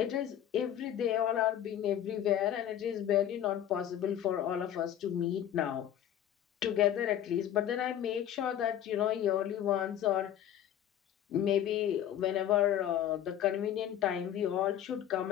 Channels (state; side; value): quieter; right; 10.7 dB